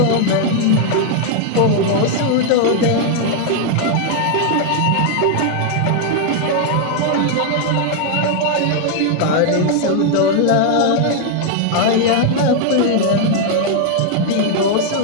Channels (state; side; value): different; both; correlation 0.00